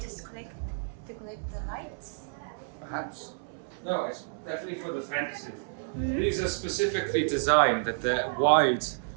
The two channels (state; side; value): silent; left; 58 dB below the other